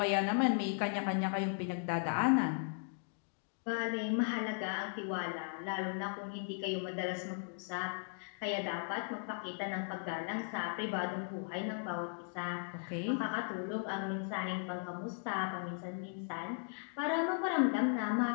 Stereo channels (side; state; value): right; silent; 53 dB below the other